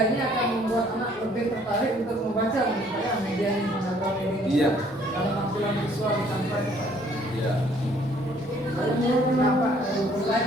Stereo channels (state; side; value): normal; both; correlation 0.60